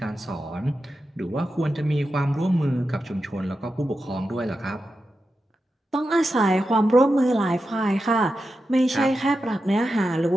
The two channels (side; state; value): both; normal; correlation 0.90